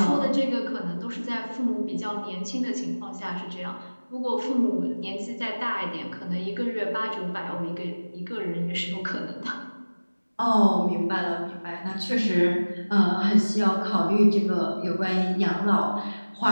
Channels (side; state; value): both; inverted; correlation -1.00